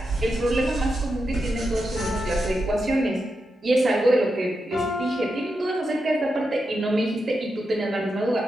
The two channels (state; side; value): normal; both; correlation 0.87